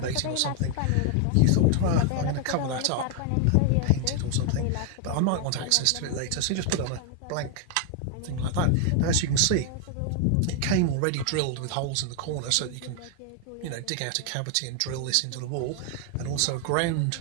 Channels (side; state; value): both; different; correlation 0.00